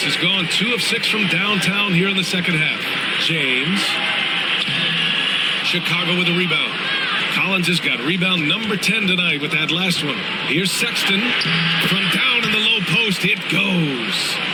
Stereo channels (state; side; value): identical; both; correlation 1.00